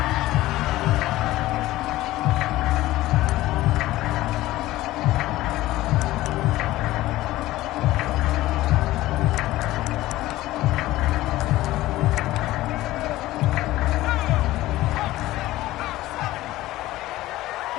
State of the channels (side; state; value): right; quieter; 16.6 dB